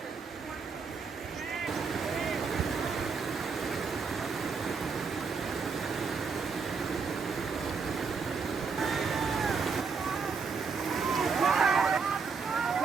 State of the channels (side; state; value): left; quieter; 5.3 dB